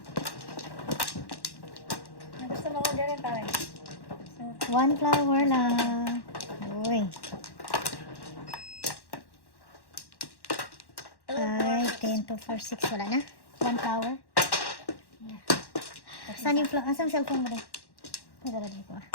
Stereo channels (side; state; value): right; late; 1.1 ms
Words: Gusto mo ko din pare. One flower lang. Uy. 5, 10, 2, 4, 6. Wala na. One flower. Saan yung flower? Asan cellphone mo din? Nagdala ko ah.